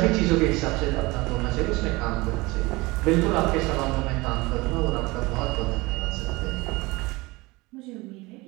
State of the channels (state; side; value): quieter; left; 22.8 dB